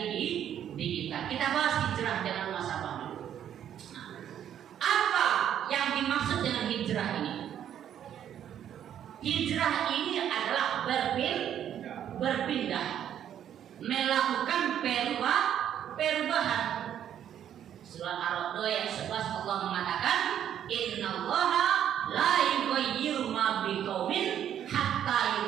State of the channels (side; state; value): left; quieter; 10.0 dB